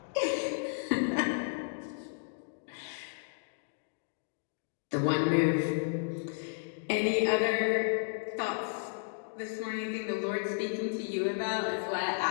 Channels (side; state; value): right; silent; digital silence